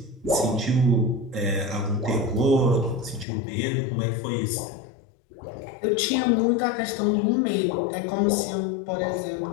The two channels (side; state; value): right; drops out; at 3.2 s